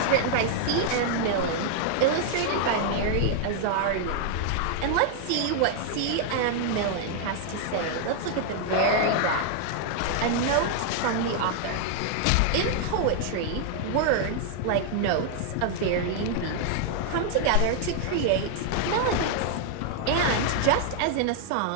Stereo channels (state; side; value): different; both; correlation 0.00